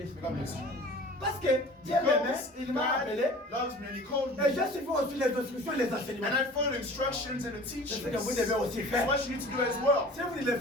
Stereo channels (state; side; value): normal; both; correlation 0.43